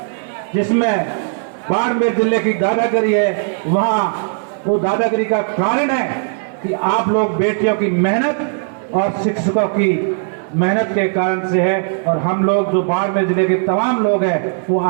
जिसमें बाड़मेर जिले की दादागिरी है, वहां वो दादागिरी का कारण है कि आप लोग बेटियों की मेहनत और शिक्षकों की मेहनत के कारण से है। और हम लोग जो बाड़मेर जिले के तमाम लोग हैं वो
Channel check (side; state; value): left; silent; 59 dB below the other